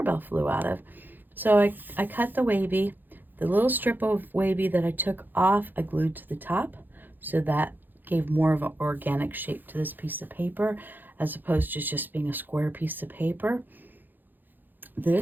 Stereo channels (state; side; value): late; left; 0.089 ms